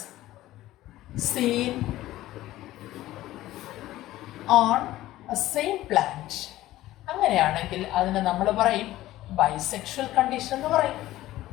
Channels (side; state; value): right; quieter; 15.6 dB